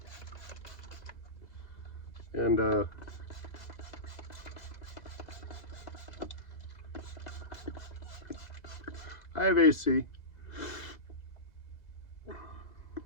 And I have AC.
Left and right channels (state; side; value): late; right; 2.0 ms